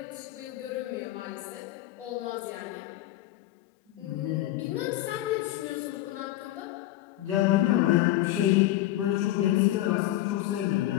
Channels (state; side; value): quieter; right; 14.9 dB